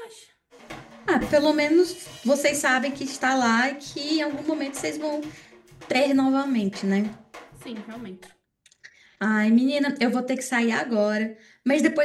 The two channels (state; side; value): identical; both; correlation 1.00